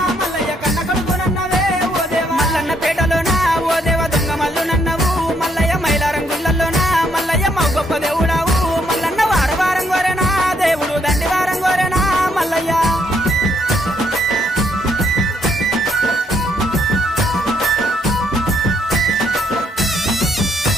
మల్లయ్య కన్న కొడుకునన్నవే ఓ దేవా మల్లన్న పేటలోనా ఓ దేవ దొంగ మల్లు నన్నవు మల్లయ్య మైలారం గుళ్ళల్లోనా మల్లయ్య మా గొప్ప దేవుడావు మల్లన్న వారవారం గోరెనా దేవుడు దండి వారం గోరెనా మల్లయ్య.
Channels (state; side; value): normal; both; correlation 0.72